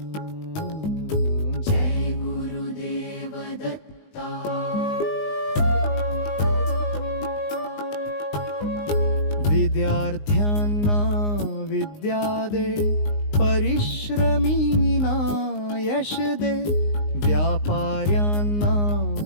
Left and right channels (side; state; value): right; late; 19 ms